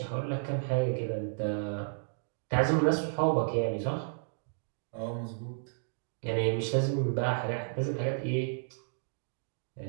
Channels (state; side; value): silent; left; digital silence